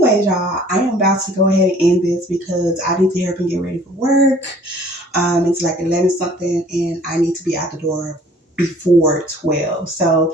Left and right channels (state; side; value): normal; both; correlation 0.53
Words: y'all, I am about to go ahead and end this because I need to hurry up and get ready for work. It's like 11 something, and I need to be out the door before 12.